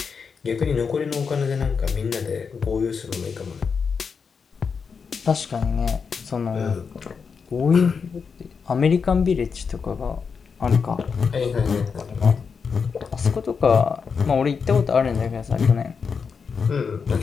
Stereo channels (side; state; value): right; quieter; 5.8 dB